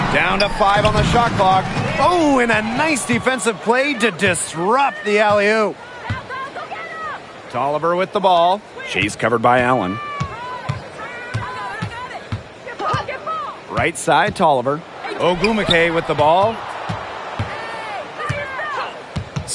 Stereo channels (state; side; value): identical; both; correlation 1.00